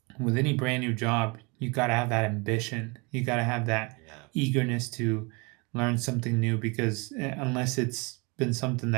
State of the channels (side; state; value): left; quieter; 29.2 dB